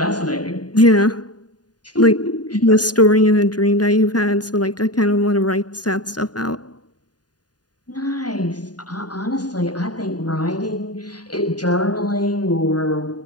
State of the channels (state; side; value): late; right; 0.69 ms